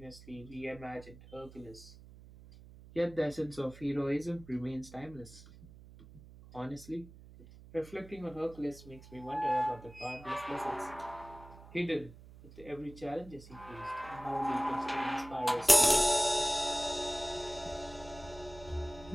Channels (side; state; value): right; noise; hum, 19 dB below the sound